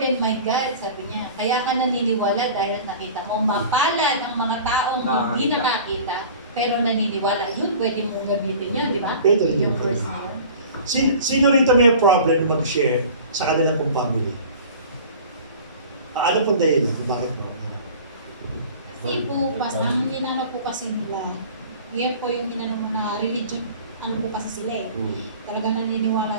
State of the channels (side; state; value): both; inverted; correlation -0.42